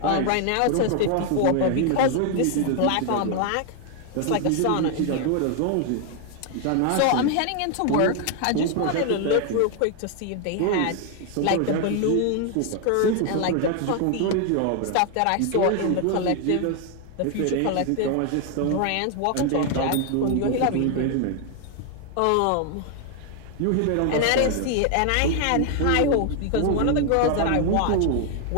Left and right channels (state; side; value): different; both; correlation 0.00